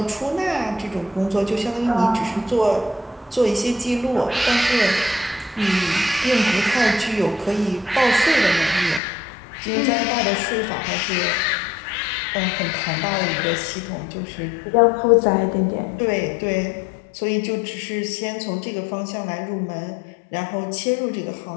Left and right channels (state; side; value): drops out; right; at 9.0 s